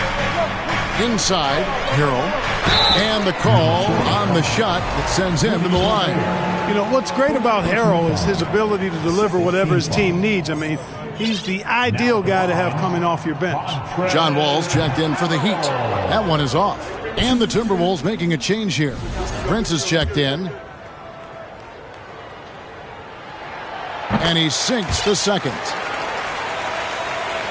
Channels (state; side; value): identical; both; correlation 1.00